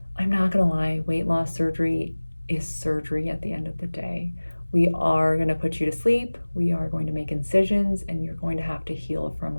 I'm not gonna lie, weight loss surgery is surgery at the end of the day. We are gonna put you to sleep, we are going to make incisions, and you're going to have to heal from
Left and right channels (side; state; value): both; inverted; correlation -1.00